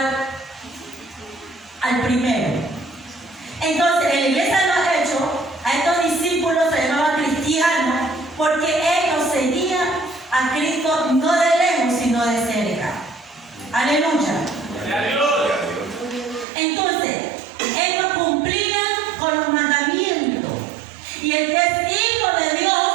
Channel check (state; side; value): drops out; left; at 16.4 s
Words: al primero. Entonces, en la iglesia de los Hechos, a estos discípulos se llamaban cristianos porque ellos seguían a Cristo no de lejos, sino de cerca. Aleluya. Entonces, ellos cumplían con los mandamientos. Y el que es hijo de Dios